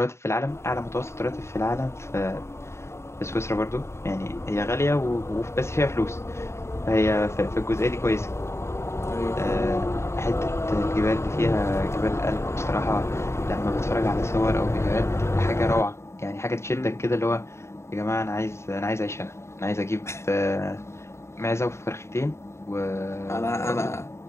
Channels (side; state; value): right; late; 0.13 ms